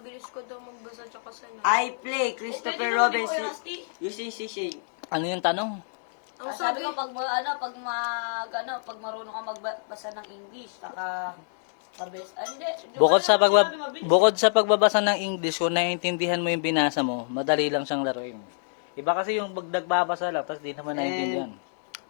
ko daw magbasa at saka sana. I play Christopher Robin using C-Shade. Ano yung tanong? Ang Sabi sabi, ko pag marunong ka magbasa ng English, saka mabilis. Hindi. Bukod sa pagbabasa ng English, kung naiintindihan mo yung binasa mo, madali lang siyang laruin. Iba kasi yung nagbabasa lang, tapos di naman naiintindihan.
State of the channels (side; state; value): right; silent; digital silence